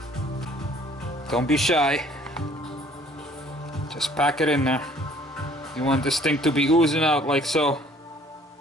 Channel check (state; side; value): normal; both; correlation 0.57